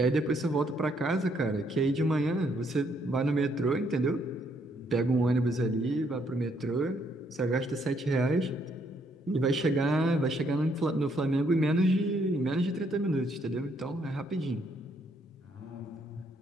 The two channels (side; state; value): both; normal; correlation 0.71